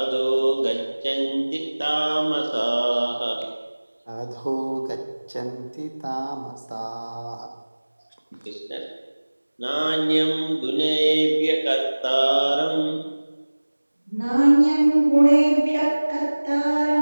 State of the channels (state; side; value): inverted; both; correlation -1.00